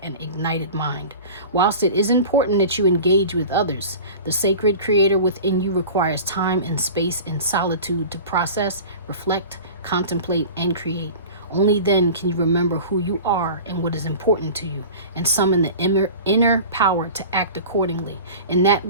and ignited mind. Whilst it is important that you engage with others, the sacred creator within you requires time and space and solitude to process, reflect, contemplate, and create. Only then can you remember who you are and what is important to you, and summon the inner power to act accordingly. In that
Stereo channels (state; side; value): inverted; both; correlation -0.37